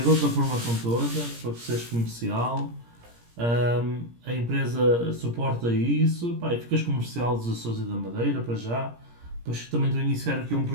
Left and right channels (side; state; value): left; late; 17 ms